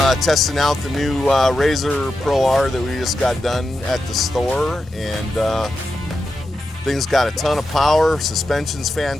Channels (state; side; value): normal; both; correlation 0.89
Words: testing out the new RZR Pro R that we just got done at the store, and thing's got a ton of power, suspension's